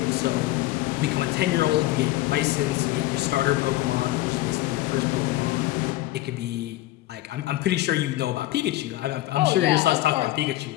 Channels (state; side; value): quieter; right; 16.7 dB